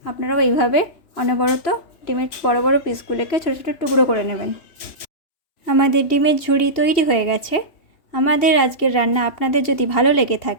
আপনারাও এইভাবে অনবরত ডিমের বড় বড় পিসগুলোকে ছোট ছোট টুকরো করে নেবেন। আমাদের ডিমের ঝুরি তৈরি হয়ে গেছে। আমাদের আজকের রান্না আপনাদের যদি ভালো লেগে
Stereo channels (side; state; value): right; late; 2.8 ms